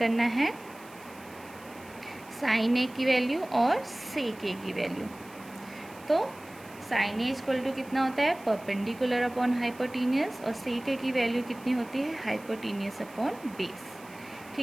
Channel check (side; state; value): right; noise; hiss, 23 dB below the sound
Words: है साइन ए की वैल्यू और सेक ए की वैल्यू। तो साइन ए इक्वल टू कितना होता है, परपेंडिकुलर अपॉन हाइपोटेनियस, और सेक ए की वैल्यू कितनी होती है, हाइपोटेनियस अपॉन बेस,